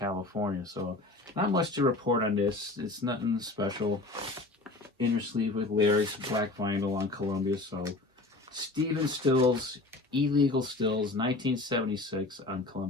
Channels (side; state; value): right; quieter; 3.0 dB